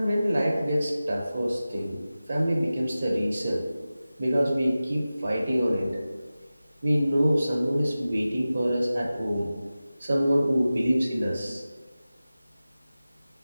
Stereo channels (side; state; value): both; inverted; correlation -0.95